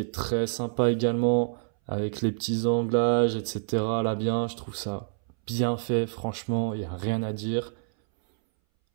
est très sympa également, avec les petits anglages, etc. Là bien, je trouve ça bien fait, franchement, il n'y a rien à dire.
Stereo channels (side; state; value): left; silent; 60 dB below the other